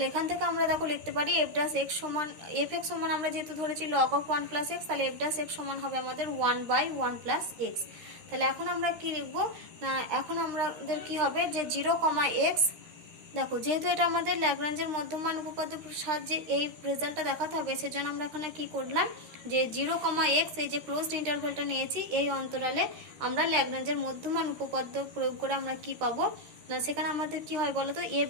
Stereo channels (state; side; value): late; left; 13 ms